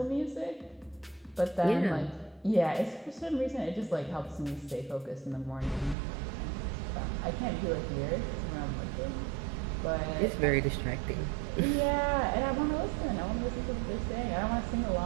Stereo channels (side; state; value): left; drops out; at 6.0 s